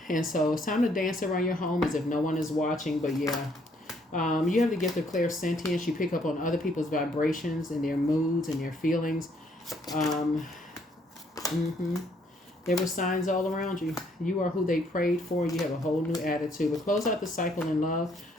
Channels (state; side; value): normal; both; correlation 0.68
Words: And so it's time to dance around your home as if no one is watching. But yeah, you have the gift of clairsentience. You pick up on other people's vibrations and their moods and their feelings. There were signs all around you. You are who they prayed for. You have a whole new attitude. But close out the cycle in love.